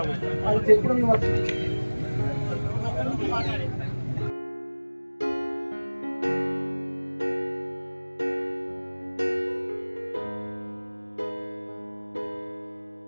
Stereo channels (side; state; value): both; inverted; correlation -1.00